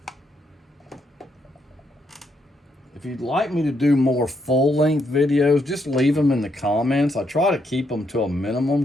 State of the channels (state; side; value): normal; both; correlation 0.77